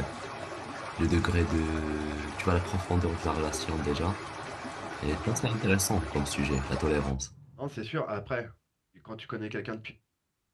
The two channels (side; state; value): both; identical; correlation 1.00